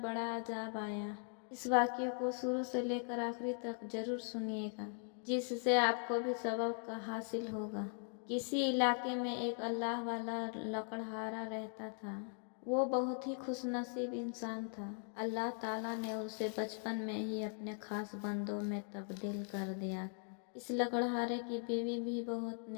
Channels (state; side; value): silent; right; 51 dB below the other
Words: अज़ाब आया। इस वाक़ये को शुरू से लेकर आखिरी तक ज़रूर सुनिएगा, जिससे आपको भी सबक हासिल होगा। किसी इलाके में एक अल्लाह वाला लकड़हारा रहता था। वो बहुत ही खुशनसीब इंसान था। अल्लाह ताला ने उसे बचपन में ही अपने खास बंदों में तब्दील कर दिया था। इस लकड़हारे की बीवी भी बहुत